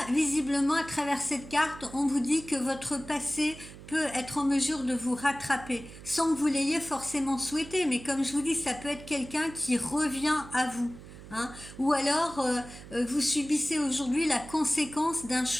visiblement, à travers cette carte, on vous dit que votre passé peut être en mesure de vous rattraper, sans que vous l'ayez forcément souhaité. Mais comme je vous dis, ça peut être quelqu'un qui revient à vous. Hein. Ou alors, vous subissez aujourd'hui la conséquence d'un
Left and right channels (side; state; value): right; noise; hum, 16 dB below the sound